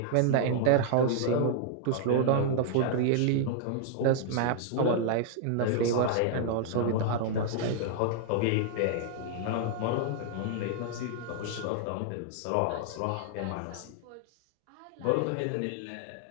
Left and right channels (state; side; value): different; both; correlation -0.01